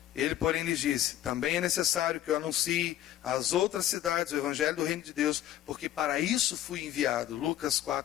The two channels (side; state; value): right; quieter; 12.5 dB